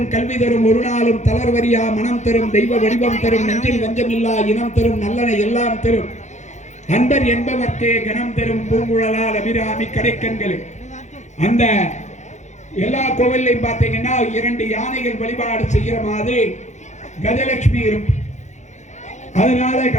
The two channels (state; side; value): late; right; 0.34 ms